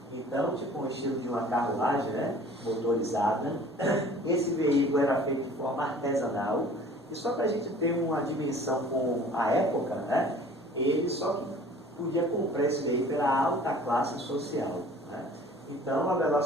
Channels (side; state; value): both; normal; correlation 0.48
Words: Então, tipo um estilo de uma carruagem, né, motorizada. Esse veículo era feito de forma artesanal, e só para a gente ter uma dimensão com a época, né, ele só podia comprar esse veículo pela alta classe social, né? Então, a